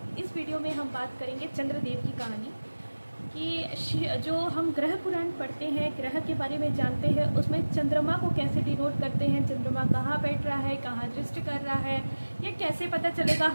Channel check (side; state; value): both; inverted; correlation -1.00